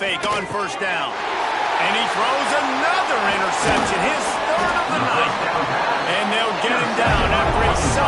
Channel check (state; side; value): identical; both; correlation 1.00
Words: on 1st down. And he throws another interception, his 3rd of the night. And they'll get him down after a